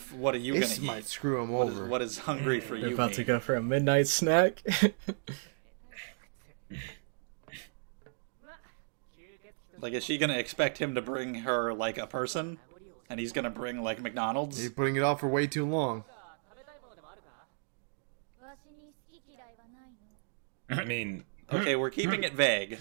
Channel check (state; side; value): silent; left; digital silence